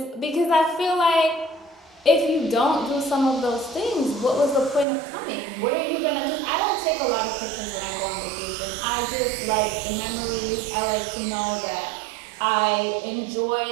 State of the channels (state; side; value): drops out; left; at 4.9 s